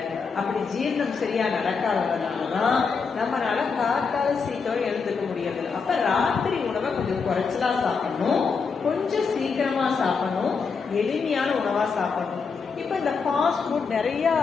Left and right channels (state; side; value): quieter; right; 5.3 dB